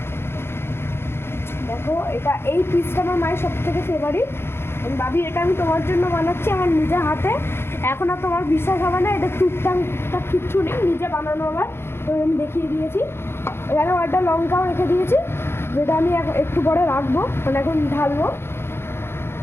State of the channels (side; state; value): right; late; 0.12 ms